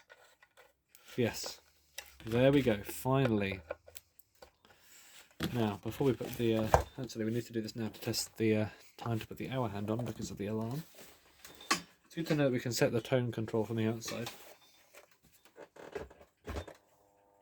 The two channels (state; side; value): identical; both; correlation 1.00